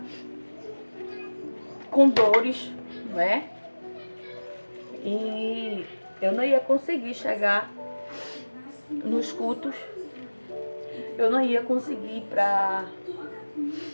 com dores, E eu não ia conseguir chegar nos cultos, eu não ia conseguir ir para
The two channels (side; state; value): both; inverted; correlation -1.00